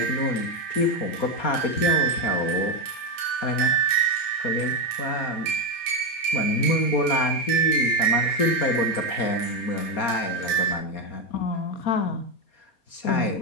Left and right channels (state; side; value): late; right; 4.2 ms